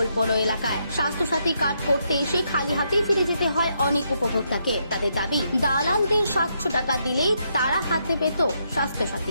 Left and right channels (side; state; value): both; inverted; correlation -0.78